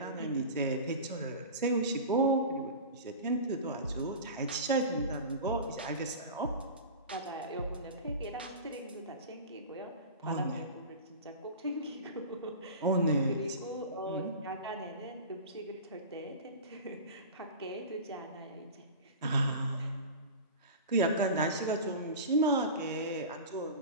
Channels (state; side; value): inverted; both; correlation -0.32